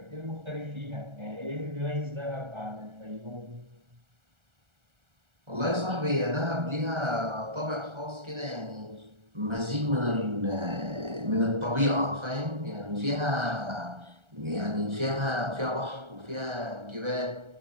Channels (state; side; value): late; left; 1.4 ms